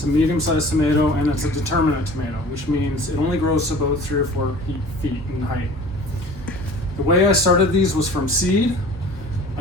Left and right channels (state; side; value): normal; both; correlation 0.44